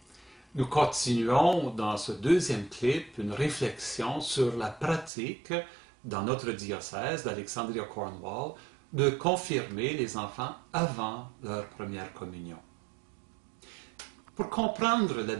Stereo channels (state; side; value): drops out; left; at 5.1 s